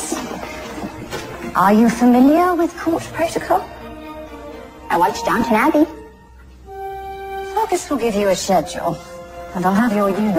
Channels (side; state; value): both; identical; correlation 1.00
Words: Are you familiar with court protocol? I watched Downton Abbey. Fergus will give you a schedule, and I'll have your